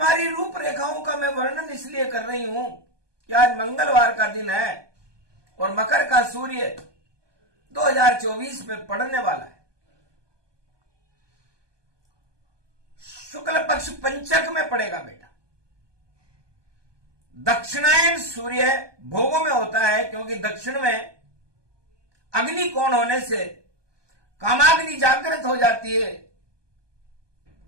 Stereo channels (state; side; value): late; left; 1.2 ms